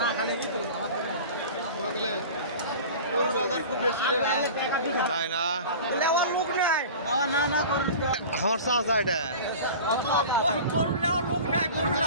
খালি বাজার খুব বেশি রে ভাই তাই না নেওয়ার লোক নাই না না করুন আমার চাচা এটা গরু নেওয়ার লোক নাই গরু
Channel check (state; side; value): inverted; both; correlation -0.37